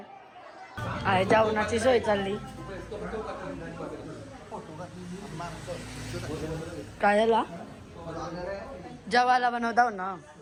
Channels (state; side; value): identical; both; correlation 1.00